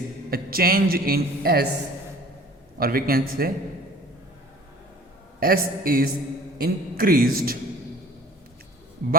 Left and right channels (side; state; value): both; normal; correlation 0.48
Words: a change in S, or we can say S is increased